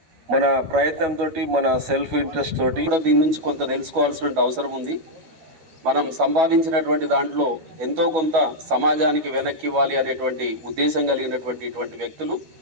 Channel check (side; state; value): left; late; 12 ms